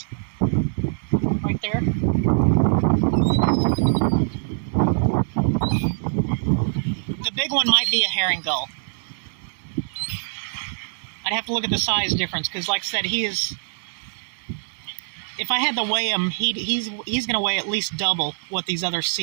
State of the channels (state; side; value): silent; left; 63 dB below the other